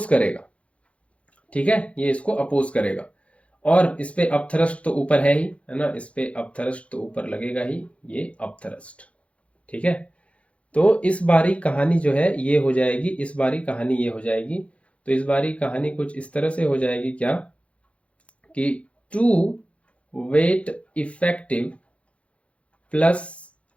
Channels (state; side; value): late; right; 0.062 ms